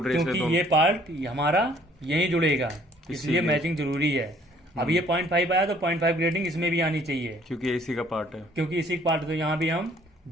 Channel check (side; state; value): both; normal; correlation 0.59